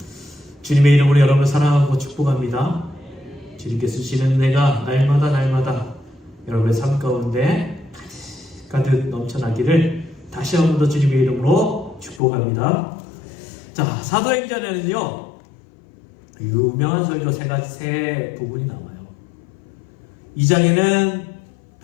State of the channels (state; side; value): drops out; right; at 12.2 s